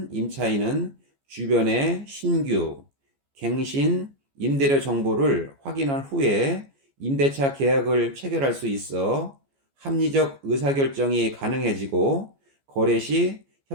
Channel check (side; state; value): left; late; 14 ms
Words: 임차인은 주변의 신규, 갱신, 임대료 정보를 확인한 후에 임대차 계약을 체결할 수 있어 합리적 의사결정이 가능해지고 거래 시